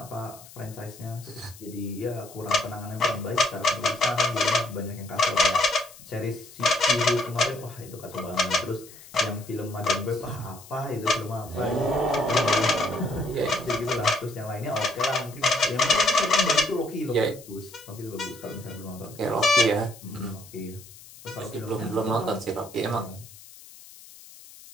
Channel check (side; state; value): left; noise; hiss, 19 dB below the sound